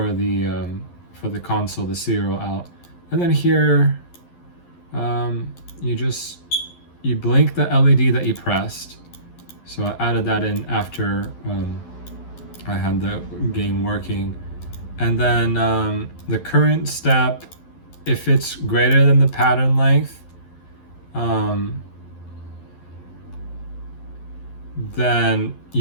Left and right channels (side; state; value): right; late; 11 ms